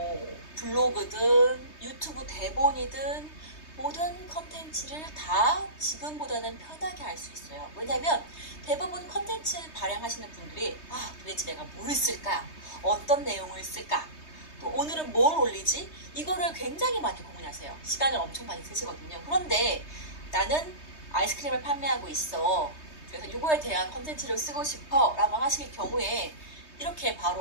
블로그든 유튜브 대본이든 모든 컨텐츠를 다 지금보다는 편하게 할 수 있어요. 왜냐면 대부분 컨텐츠 발행하시는 분들이 도대체 내가 뭘 쓸까? 어떤 내용을 쓸까? 또 오늘은 뭘 올리지? 이거를 굉장히 많이 고민하세요. 시간을 엄청 많이 쓰시거든요. 그런데 나는 아이스크림을 판매하고 있어. 그래서 이거에 대한 컨텐츠를 쓰고 싶어 라고 하실 경우에 이렇게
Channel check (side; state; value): right; late; 3.2 ms